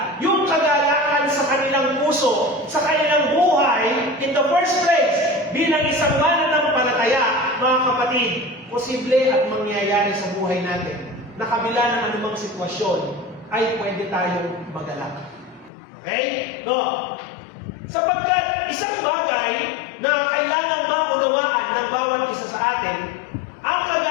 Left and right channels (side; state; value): right; drops out; at 15.7 s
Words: yung kagalakan sa kanilang puso, sa kanilang buhay, in the first place, bilang isang mananampalataya, mga kapatid, posible at mangyayari sa buhay natin na kabila ng anumang sitwasyon ay pwede tayong magalak. Okay? No? Sapagkat isang bagay na kailangan maunawaan ng bawat isa sa atin, ang